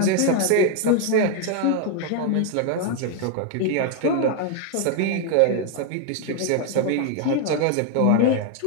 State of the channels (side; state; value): both; different; correlation 0.00